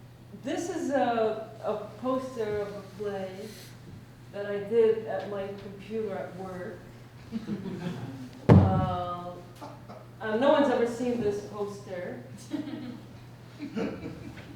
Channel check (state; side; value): identical; both; correlation 1.00